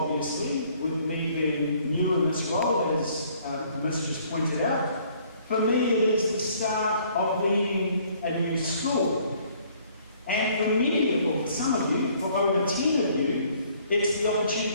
with me being new in this role, as Miss just pointed out. For me, it is the start of leading a new school. And for many of you, for some of you, for over 10 of you, it's the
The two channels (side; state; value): both; inverted; correlation -0.61